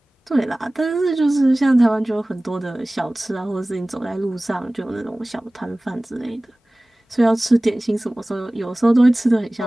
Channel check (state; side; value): normal; both; correlation 0.98